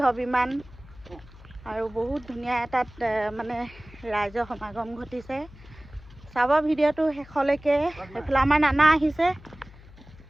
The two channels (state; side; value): noise; left; hum, 21 dB below the sound